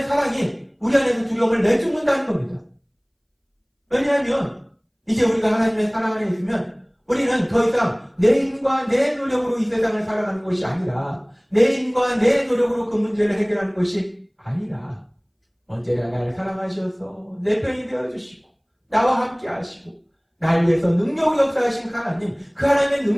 사랑이 우리 안에서 두려움을 내쫓는다는 겁니다. 왜냐하면 이제 우리가 하나님의 사랑 안에 있으면 우리는 더 이상 내 힘과 내 노력으로 이 세상을 살아가는 것이 아니라 내 힘과 내 노력으로 그 문제를 해결하는 것이 아니라 언제나 나를 사랑하셔서 내 편이 되어주시고 나와 함께 하시고 나를 위해서 능력으로 역사하신 하나님 그 하나님의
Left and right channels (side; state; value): both; identical; correlation 1.00